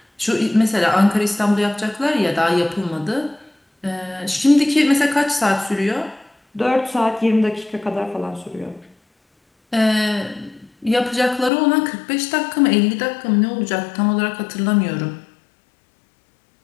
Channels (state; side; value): drops out; right; at 11.5 s